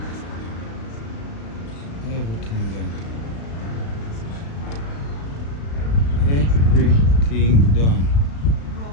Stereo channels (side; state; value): right; late; 36 ms